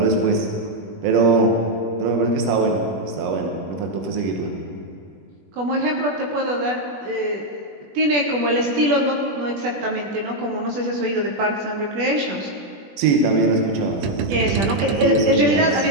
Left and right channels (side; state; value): left; late; 20 ms